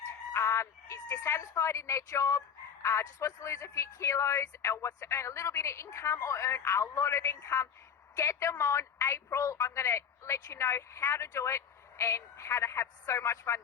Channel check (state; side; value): quieter; right; 7.5 dB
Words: is dissatisfied in their job, just wants to lose a few kilos, or wants to earn a little bit of income or earn a lot of income, get them on April. I'm going to let you know how to do it and how to have so much fun